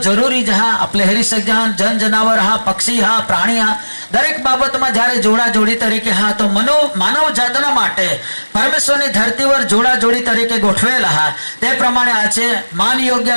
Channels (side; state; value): both; inverted; correlation -1.00